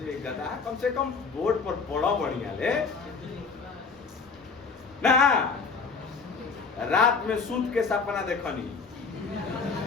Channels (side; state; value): right; quieter; 4.8 dB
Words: गधा कम से कम बोर्ड पर पढ़ो बढ़िया ले ना। रात में सूत के सपना देखनी।